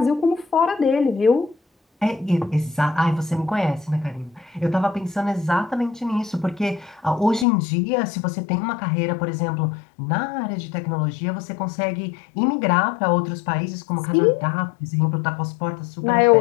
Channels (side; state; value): right; drops out; at 7.5 s